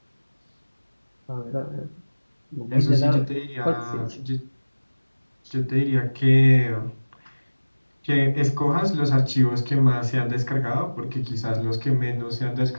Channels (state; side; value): inverted; both; correlation -1.00